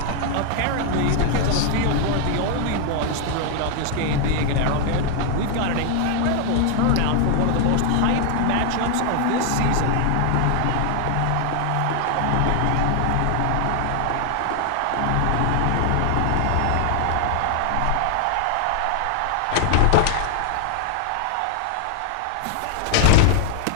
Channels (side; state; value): both; different; correlation 0.00